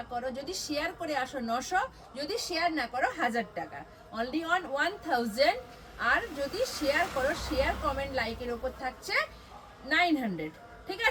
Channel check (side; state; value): both; identical; correlation 1.00